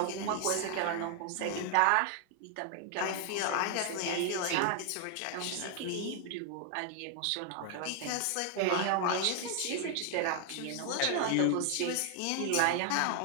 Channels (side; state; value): both; different; correlation 0.00